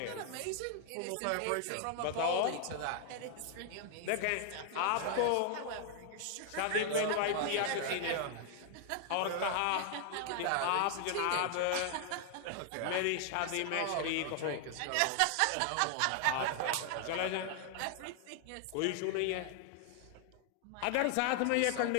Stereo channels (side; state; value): both; different; correlation 0.00